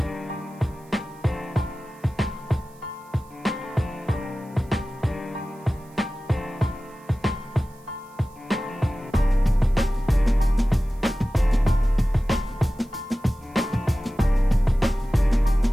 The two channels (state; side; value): noise; right; hiss, 29 dB below the sound